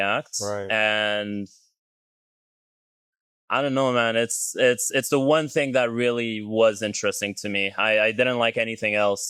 Right. And I don't know, man. It's the one thing that really was interesting to me. I didn't like anything else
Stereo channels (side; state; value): both; identical; correlation 1.00